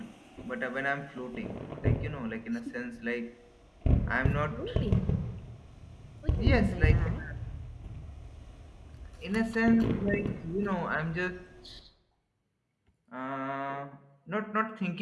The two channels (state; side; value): identical; both; correlation 1.00